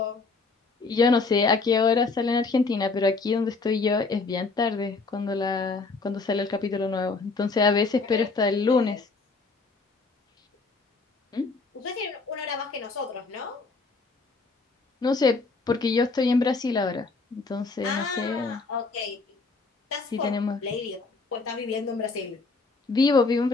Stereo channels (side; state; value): right; quieter; 4.0 dB